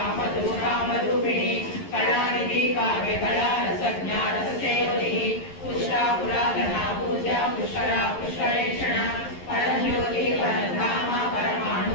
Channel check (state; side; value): late; right; 11 ms